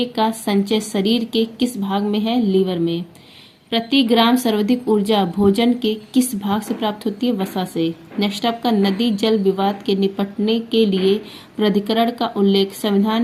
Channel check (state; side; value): identical; both; correlation 1.00